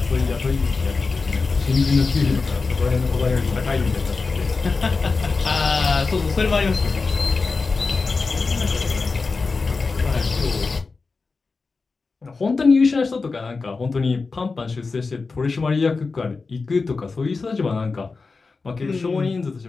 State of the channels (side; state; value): right; quieter; 4.2 dB